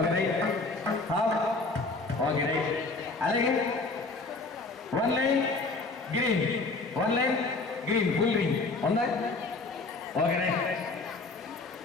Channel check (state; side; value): quieter; right; 3.6 dB